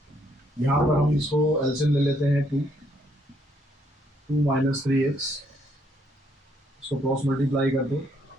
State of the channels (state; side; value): normal; both; correlation 0.71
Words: यहाँ पर हम इसको एलसीएम ले लेते हैं, 2 - 3x, इसको क्रॉस मल्टीप्लाई कर दो,